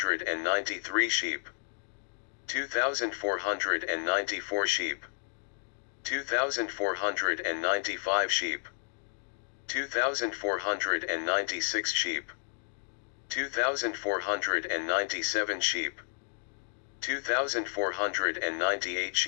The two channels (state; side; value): silent; right; digital silence